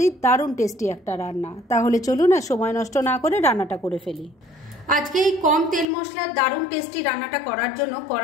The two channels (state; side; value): drops out; right; at 5.9 s